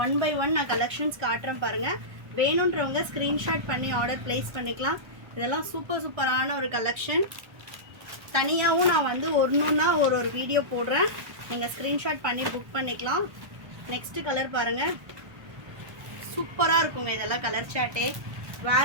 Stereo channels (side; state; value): left; late; 1.1 ms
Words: ஒன் பை ஒன் நான் கலெக்ஷன்ஸ் காட்டுறேன் பாருங்கள். வேணுன்றவங்க ஸ்க்ரீன்ஷாட் பண்ணி ஆர்டர் ப்ளேஸ் பண்ணிக்கலாம். இதெல்லாம் சூப்பரான ஒரு கலெக்ஷன். தனியாகவும் நான் வந்து ஒன்றுன்னா ஒரு வீடியோ போடுறேன், நீங்கள் ஸ்க்ரீன்ஷாட் பண்ணி புக் பண்ணிக்கலாம். நெக்ஸ்ட்டு கலர் பாருங்கள், சூப்பராக இருக்குங்க. இதெல்லாம் கலர் சார்ட்டே